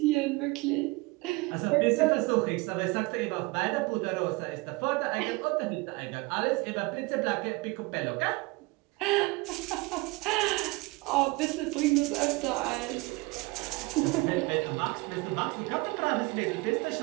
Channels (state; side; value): quieter; left; 24.7 dB